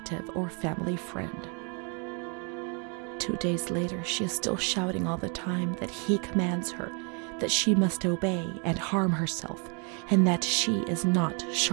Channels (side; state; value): left; quieter; 36.2 dB